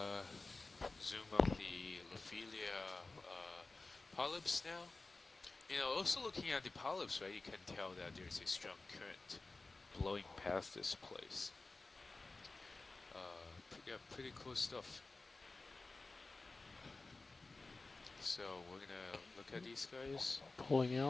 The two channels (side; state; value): right; quieter; 3.4 dB